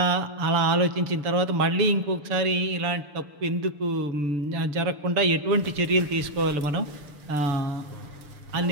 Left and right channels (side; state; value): left; late; 6.8 ms